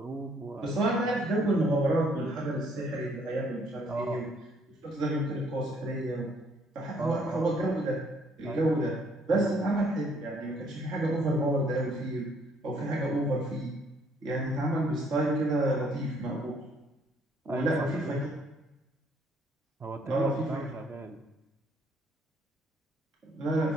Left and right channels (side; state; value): both; normal; correlation 0.65